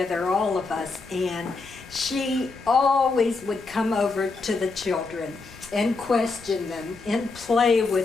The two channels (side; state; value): right; quieter; 3.9 dB